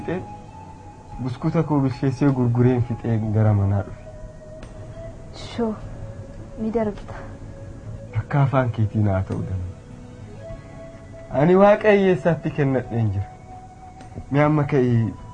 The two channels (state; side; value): identical; both; correlation 1.00